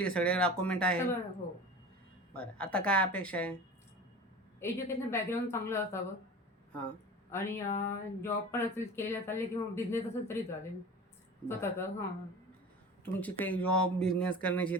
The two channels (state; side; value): normal; both; correlation 0.36